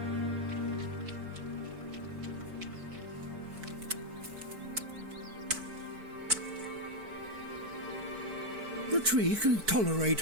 The tree can tolerate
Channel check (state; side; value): late; left; 4.6 ms